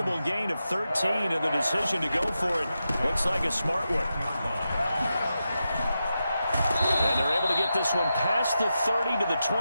gain of 13, and the decision to go for it looks like a smart one. And they're able to get this one past the 30 to the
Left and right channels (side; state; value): both; inverted; correlation -0.89